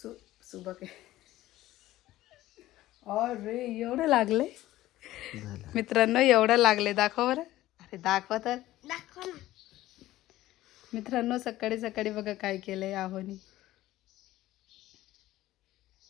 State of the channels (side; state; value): right; quieter; 15.6 dB